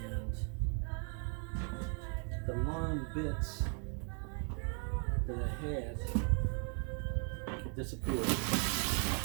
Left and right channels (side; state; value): left; quieter; 39.5 dB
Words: the long bits that I had disappeared,